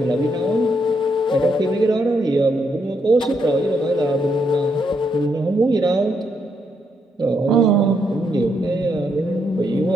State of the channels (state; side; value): normal; both; correlation 0.77